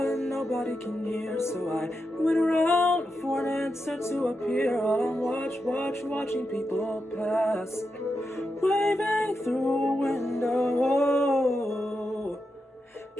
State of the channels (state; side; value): normal; both; correlation 0.87